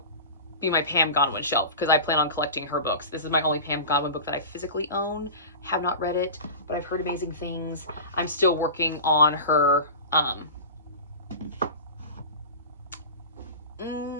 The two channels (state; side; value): inverted; both; correlation -0.31